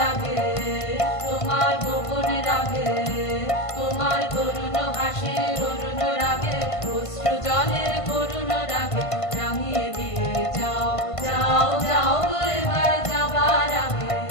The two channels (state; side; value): late; right; 1.5 ms